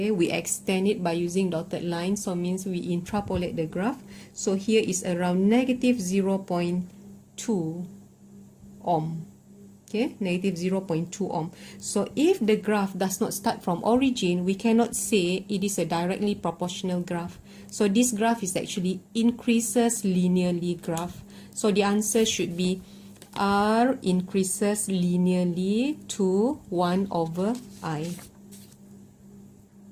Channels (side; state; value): both; identical; correlation 1.00